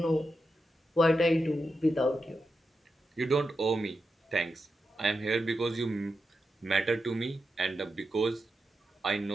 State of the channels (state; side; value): normal; both; correlation 0.88